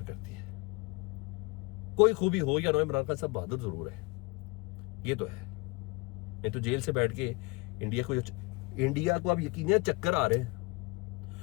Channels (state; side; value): quieter; right; 26.4 dB